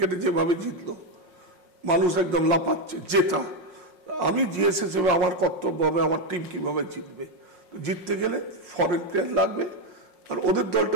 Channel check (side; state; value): left; late; 5.5 ms